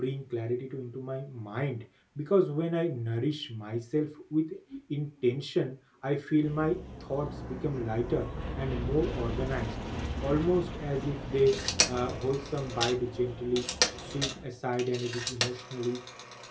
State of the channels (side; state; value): both; identical; correlation 1.00